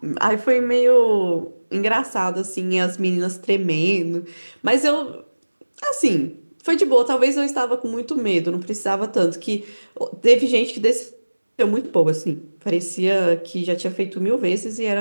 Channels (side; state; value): both; inverted; correlation -1.00